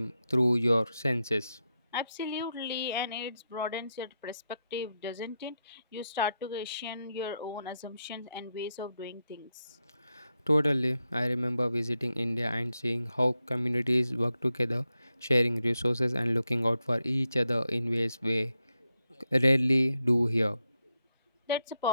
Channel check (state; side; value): inverted; both; correlation -0.86